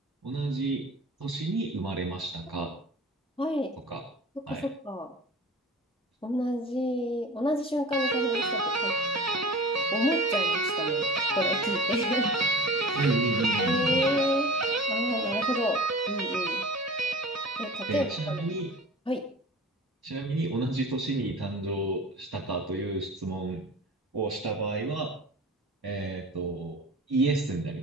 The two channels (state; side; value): normal; both; correlation 0.39